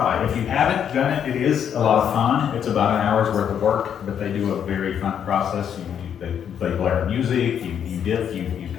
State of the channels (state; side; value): quieter; right; 8.6 dB